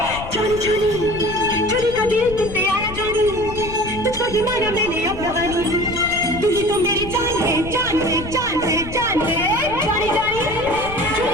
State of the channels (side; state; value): left; noise; rumble, 11 dB below the sound